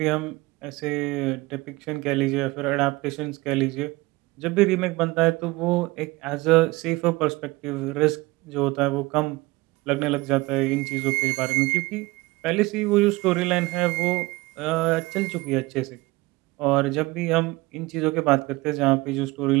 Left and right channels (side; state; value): left; quieter; 21.9 dB